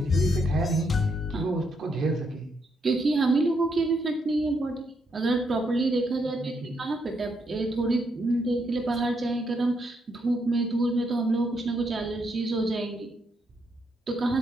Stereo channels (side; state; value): both; normal; correlation 0.77